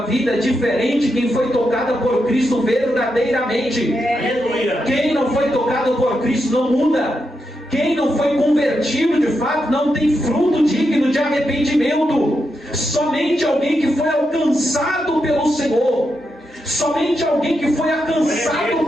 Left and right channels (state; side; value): normal; both; correlation 0.85